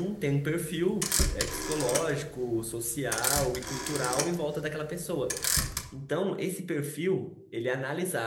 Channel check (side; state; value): both; identical; correlation 1.00